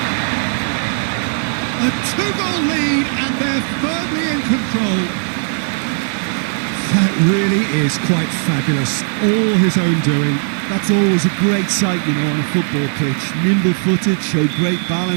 A 2-goal lead and they're firmly in control. That really is quite fabulous. All his own doing. That's always a great sight, you know, on a football pitch. Nimble-footed, showed great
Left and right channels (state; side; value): silent; left; 68 dB below the other